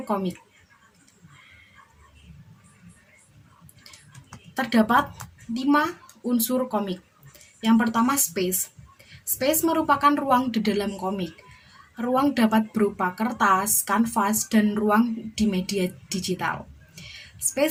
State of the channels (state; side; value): identical; both; correlation 1.00